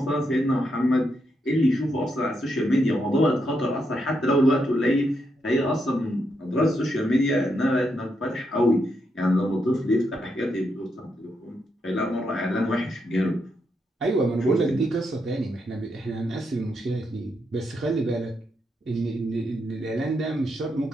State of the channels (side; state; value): both; normal; correlation 0.81